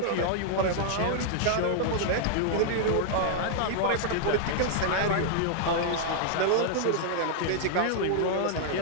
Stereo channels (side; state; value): both; different; correlation -0.01